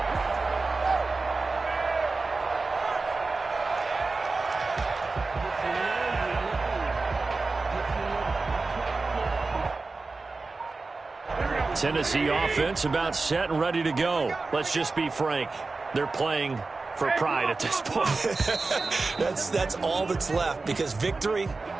Tennessee offense about set and ready to go. Let's just be frank. They're playing for pride at this point. That's all that's left, because victory,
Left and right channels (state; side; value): quieter; left; 3.8 dB